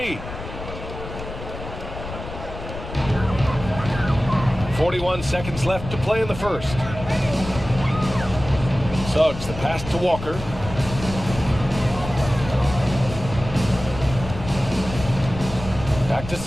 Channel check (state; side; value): noise; left; rumble, 10 dB below the sound